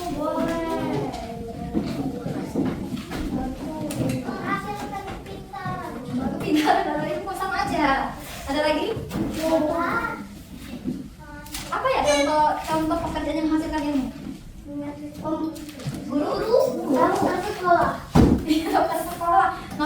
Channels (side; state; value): both; identical; correlation 1.00